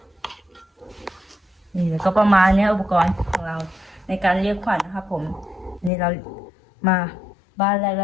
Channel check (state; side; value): drops out; right; at 5.9 s